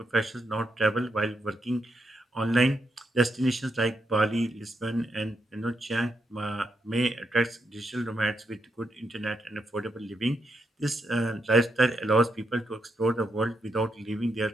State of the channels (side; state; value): both; normal; correlation 0.81